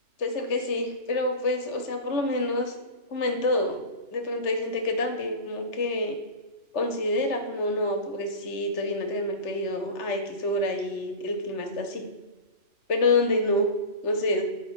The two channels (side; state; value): right; late; 3.3 ms